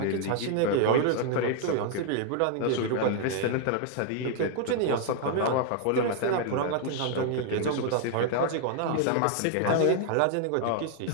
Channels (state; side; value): different; both; correlation 0.00